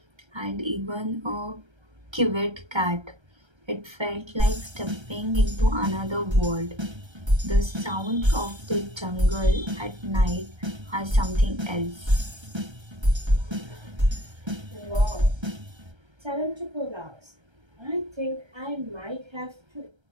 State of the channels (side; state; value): left; late; 1.3 ms